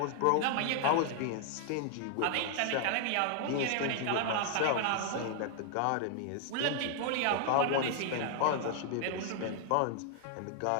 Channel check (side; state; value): both; different; correlation 0.00